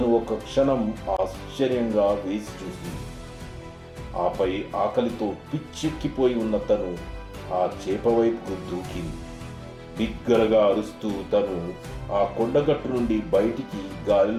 ఒక క్షణం ఆశ్చర్యంగా వేసి చూసింది. ఆపై ఆకలితో పిచ్చెక్కిపోయి ఉన్న తను ఆ చేప వైపుకు దూకింది. బిగ్గరగా అరుస్తూ తను ఆ కొండగట్టు నుండి బయటికి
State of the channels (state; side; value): identical; both; correlation 1.00